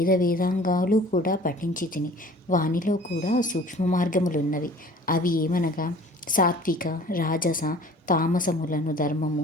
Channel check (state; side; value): normal; both; correlation 0.48